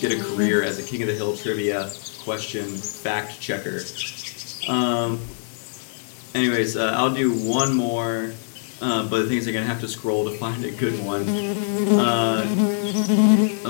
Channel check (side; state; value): right; silent; digital silence